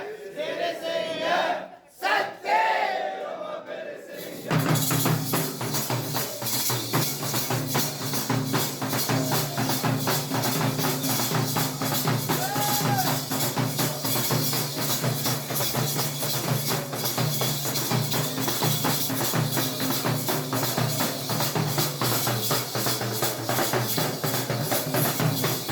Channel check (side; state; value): both; identical; correlation 1.00